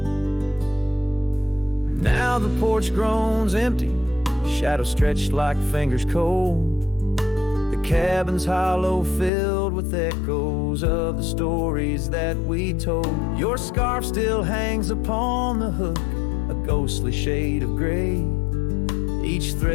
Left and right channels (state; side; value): drops out; right; at 9.3 s